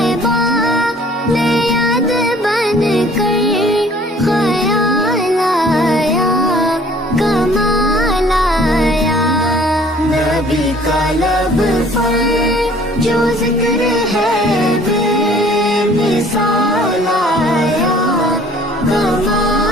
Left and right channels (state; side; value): normal; both; correlation 0.54